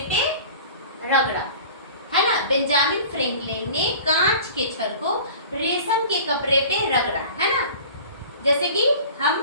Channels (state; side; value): inverted; both; correlation -0.42